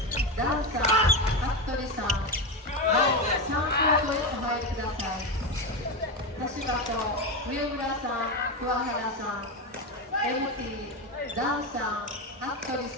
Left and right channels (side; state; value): both; normal; correlation 0.15